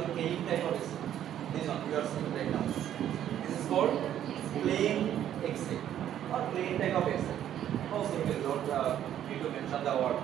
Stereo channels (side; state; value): left; quieter; 10.8 dB